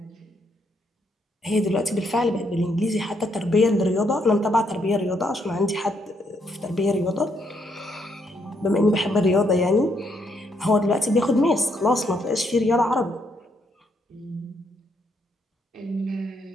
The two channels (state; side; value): normal; both; correlation 0.74